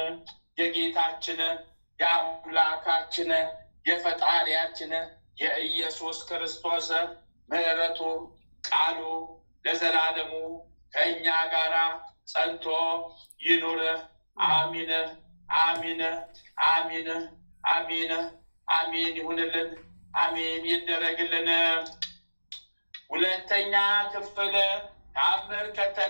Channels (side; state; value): both; inverted; correlation -1.00